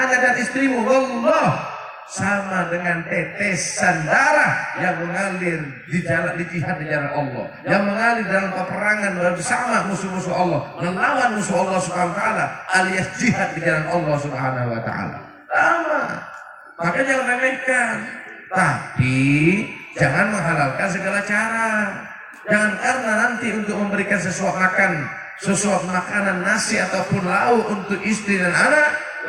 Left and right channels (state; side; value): identical; both; correlation 1.00